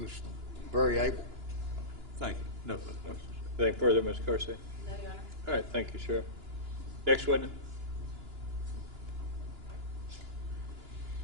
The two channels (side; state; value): left; late; 2.9 ms